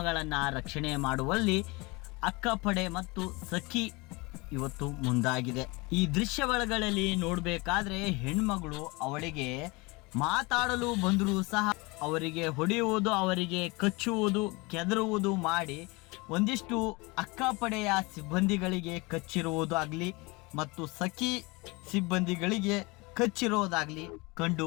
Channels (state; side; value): quieter; right; 25.5 dB